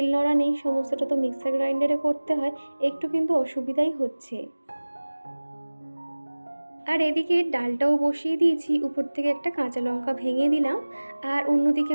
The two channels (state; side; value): inverted; both; correlation -1.00